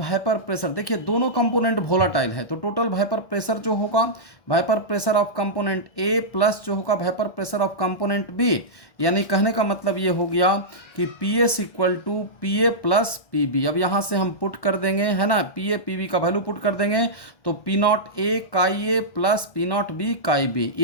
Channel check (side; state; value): right; late; 1.1 ms